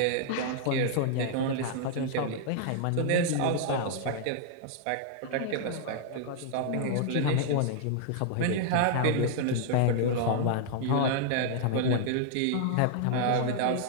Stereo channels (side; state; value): both; different; correlation -0.01